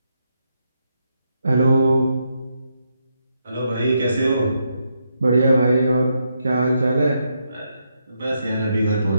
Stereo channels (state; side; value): inverted; both; correlation -0.80